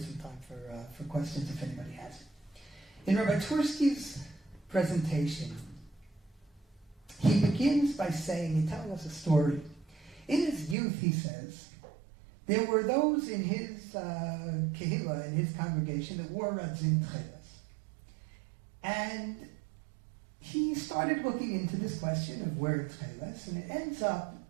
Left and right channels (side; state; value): left; drops out; at 10.8 s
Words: time for questions if anybody has. In Rabbi Twerski's presentation, he begins by saying, he's telling us a story. In his youth, he says, there were those in his kehillah, in his congregation, that wore radzin tcheles. And he started looking into this question of wearing tcheles, and it ends up